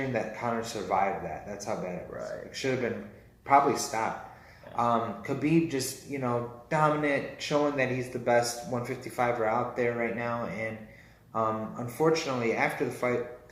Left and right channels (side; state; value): both; identical; correlation 1.00